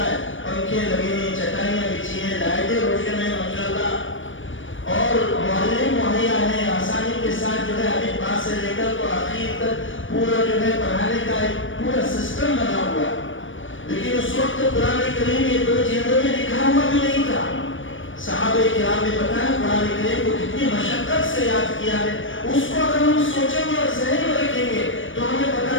ہے، پنکھے لگے ہیں، چٹائیاں بچھی ہیں، لائٹیں روشن ہیں ماشاءاللہ، اور معلم مہیا ہے، آسانی کے ساتھ جو ہے الف با سے لے کر تو آخر تک پورا جو ہے پڑھانے کا ایک پورا سسٹم بنا ہوا ہے۔ لیکن اس وقت قرآن کریم یہ 2 جلدوں میں لکھا ہوا بھی نہیں تھا۔ صحابہ کرام نے بتایا قرآن کریم کو کتنی مشقت سے یاد کیا ہے، اس کو اگر ہم سوچیں گے اور ذہن میں رکھیں گے تو ہمیں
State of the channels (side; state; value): right; late; 0.56 ms